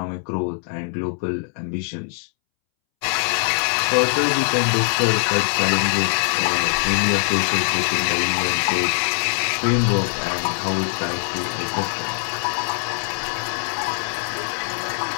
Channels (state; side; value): silent; right; 64 dB below the other